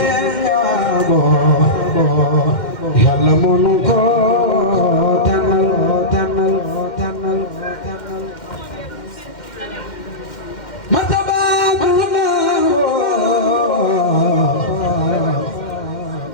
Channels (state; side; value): late; right; 2.1 ms